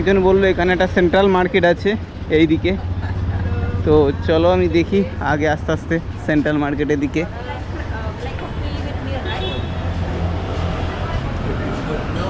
বললো এখানে একটা সেন্ট্রাল মার্কেট আছে এই দিকে। তো চলো আমি দেখি আগে আস্তে আস্তে সেন্ট্রাল মার্কেটের দিকে।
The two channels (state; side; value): identical; both; correlation 1.00